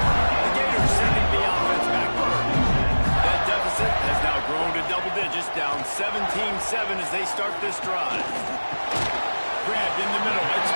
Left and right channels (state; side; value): inverted; both; correlation -1.00